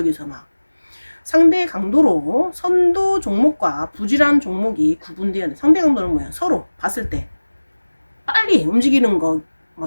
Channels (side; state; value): both; inverted; correlation -1.00